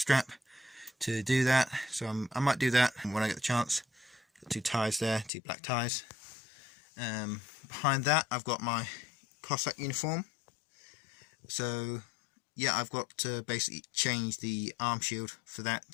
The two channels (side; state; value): right; drops out; at 5.3 s